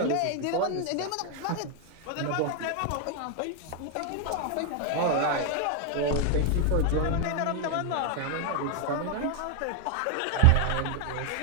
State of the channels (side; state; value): both; different; correlation 0.01